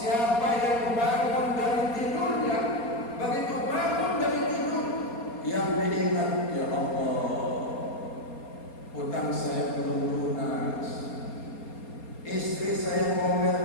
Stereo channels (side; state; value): right; late; 4.3 ms